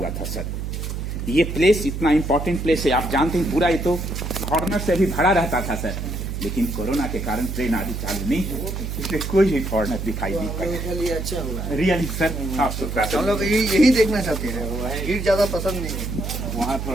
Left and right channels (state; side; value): noise; right; hum, 4 dB below the sound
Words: था सर। ये प्लेस इतना इंपॉर्टेंट प्लेस है, आप जानते हैं पूरा ये तो फॉरनर से भी भरा रहता था सर, लेकिन कोरोना के कारण ट्रेन आदि चालू नहीं है, इसलिए कोई भी फॉरनर दिखाई नहीं पड़ा। अच्छा हुआ रियली सर, साफ सुथरा हम लोग यही देखना चाहते हैं, भीड़ ज्यादा पसंद नहीं है। वहाँ